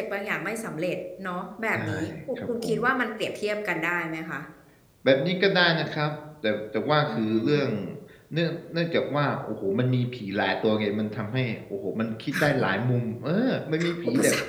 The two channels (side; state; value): both; identical; correlation 1.00